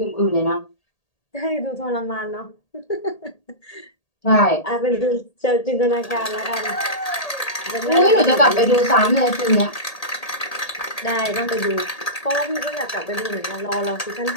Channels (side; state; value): right; late; 1.8 ms